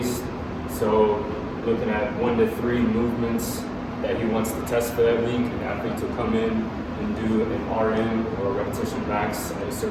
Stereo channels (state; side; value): identical; both; correlation 1.00